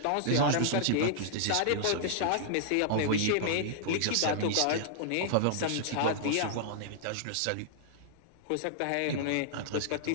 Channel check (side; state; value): both; different; correlation -0.01